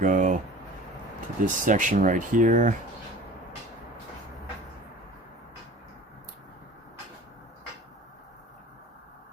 to this section right here.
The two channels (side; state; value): both; normal; correlation 0.42